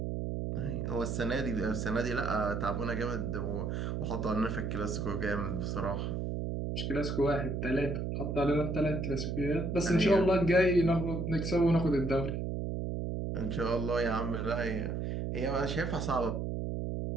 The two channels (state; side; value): noise; right; hum, 2 dB below the sound